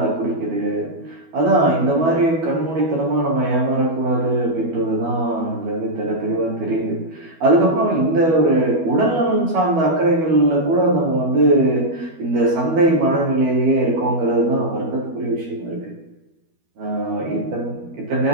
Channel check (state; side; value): late; left; 12 ms